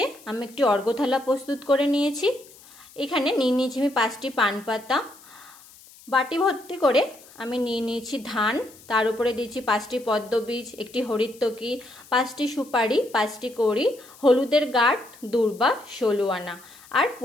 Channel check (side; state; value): left; noise; hiss, 23 dB below the sound